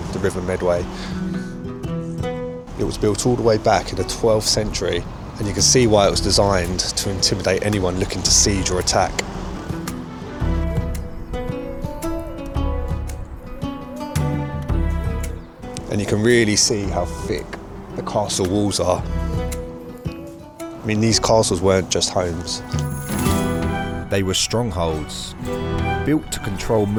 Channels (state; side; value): identical; both; correlation 1.00